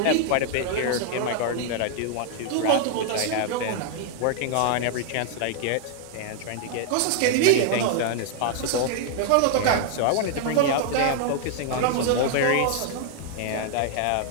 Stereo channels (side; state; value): both; different; correlation 0.00